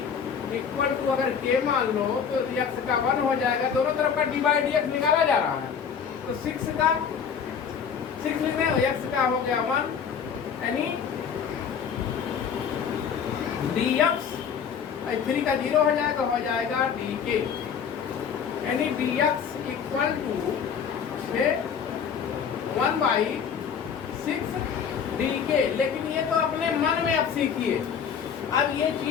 = अगर k मान लो तो x का 1 हो जाएगा, दोनों तरफ का d/dx निकाला जा रहा है, तो 6 लिखने x का हो गया 1, यानी dx 3 का 0 हो जाएगा dk, यानी dx = 1/6 dk। लेकिन ये तो अपने मन में अब सीखिए, अब ये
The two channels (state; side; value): quieter; right; 7.2 dB